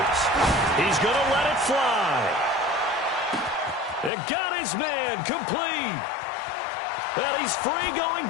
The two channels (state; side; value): drops out; right; at 4.1 s